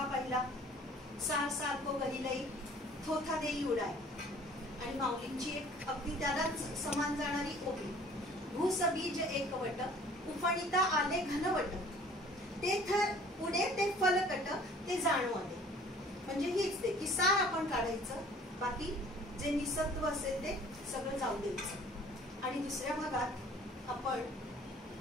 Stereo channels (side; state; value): both; normal; correlation 0.52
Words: पाहिला, सार सारखो गहिलई थोथा देई उडाय, आणि माऊलींची एक अगदी त्यालाच समान जाणारी ओवी, भूसबीज एकवट उफणिता आले घनवट, ते थर पुढे ते फलकट ते जाणवले. म्हणजे हीच ते की सार आपण काढायचं, बाकी जे निसत्व असेल ते सगळं जाऊ द्यायचं. आणि दुसऱ्या भागात आपण